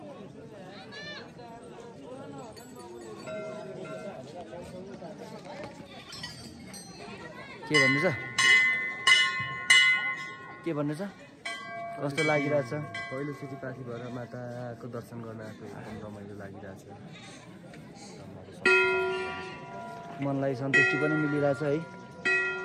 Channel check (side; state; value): both; identical; correlation 1.00